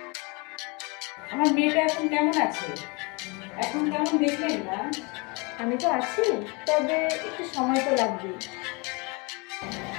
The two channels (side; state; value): right; quieter; 29.5 dB